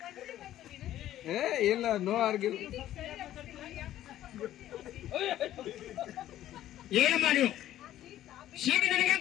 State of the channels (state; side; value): quieter; right; 13.0 dB